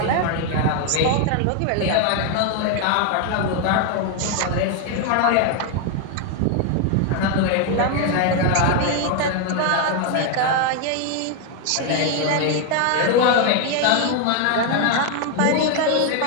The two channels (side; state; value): both; different; correlation 0.01